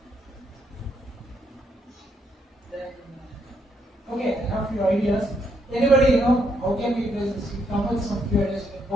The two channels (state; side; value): normal; both; correlation 0.75